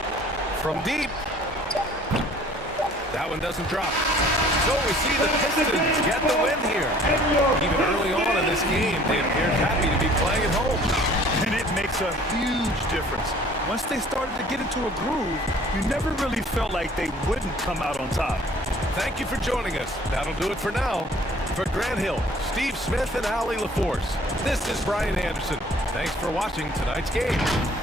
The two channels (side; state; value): both; normal; correlation 0.53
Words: From deep. That one doesn't drop. So we see the Pistons get the win here. Even early on in this game, they appeared happy to be playing at home. And it makes a huge difference. Once they started to get into a groove, you never really felt like they wouldn't come out on top. Thank you for joining us. That'll do it for now. For Grant Hill, Steve Smith, and Allie LaForce, this is Brian Anderson. Thanks for watching tonight's game.